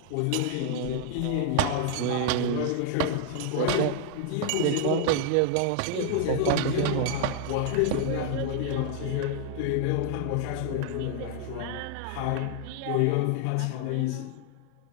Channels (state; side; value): different; both; correlation 0.00